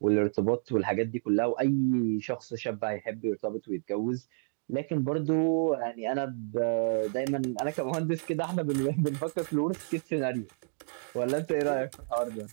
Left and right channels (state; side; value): silent; left; digital silence